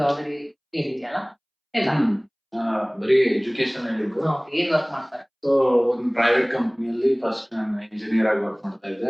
ಹೇಳಿದ್ಯಲ್ಲ, ಇಲ್ಲ ಬರೀ ಎಜುಕೇಶನ್ ಹೇಳಿದ್ರು. ಏನ್ ವರ್ಕ್ ಮಾಡ್ತಾರೆ? ಸೊ ಒಂದು ಪ್ರೈವೇಟ್ ಕಂಪ್ನಿಯಲ್ಲಿ ಫಸ್ಟ್ ನಾನು ಇಂಜಿನಿಯರ್ ಆಗಿ ವರ್ಕ್ ಮಾಡ್ತಾ ಇದ್ದೆ.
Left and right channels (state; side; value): identical; both; correlation 1.00